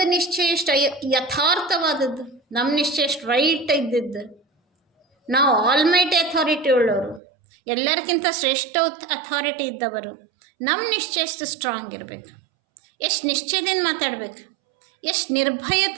ನಿಶ್ಚಯ ಎಷ್ಟು ಯಥಾರ್ಥವಾದದ್ದು, ನಮ್ಮ ನಿಶ್ಚಯ ಎಷ್ಟು ರೈಟ್ ಇದ್ದಿದ್ದು. ನಾವು ಆಲ್ಮೈಟಿ ಅಥಾರಿಟಿ ಉಳ್ಳವರು, ಎಲ್ಲರಿಗಿಂತ ಶ್ರೇಷ್ಠ ಅಥಾರಿಟಿ ಇದ್ದವರು. ನಮ್ಮ ನಿಶ್ಚಯ ಎಷ್ಟು ಸ್ಟ್ರಾಂಗ್ ಇರಬೇಕು, ಎಷ್ಟು ನಿಶ್ಚಯದಿಂದ ಮಾತಾಡಬೇಕು, ಎಷ್ಟು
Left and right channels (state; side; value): drops out; left; at 7.2 s